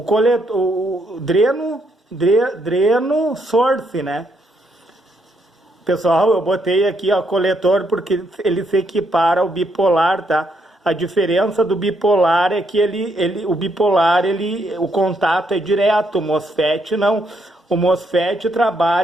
dreno, source, né? Pessoal, eu botei aqui, ó, coletor, porque ele se equipara ao bipolar, tá? A diferença do bipolar é que o bipolar, o contato é direto, o MOSFET não. O MOSFET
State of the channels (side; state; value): both; normal; correlation 0.75